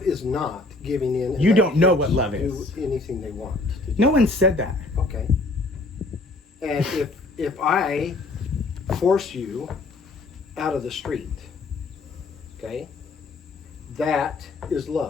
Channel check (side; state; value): right; quieter; 3.2 dB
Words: is not giving in. You don't know what love is. Do anything they want. No one said that. Okay. And if I force you out of the street, okay, That is